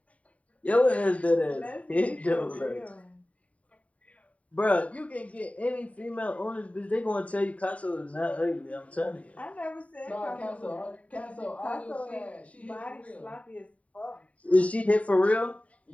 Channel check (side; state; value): right; late; 0.067 ms